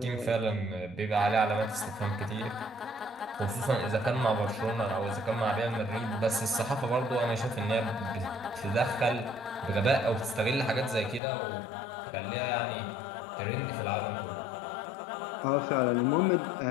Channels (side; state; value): right; drops out; at 11.2 s